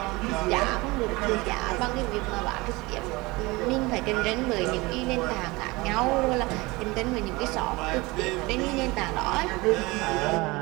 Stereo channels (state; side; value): quieter; left; 22.9 dB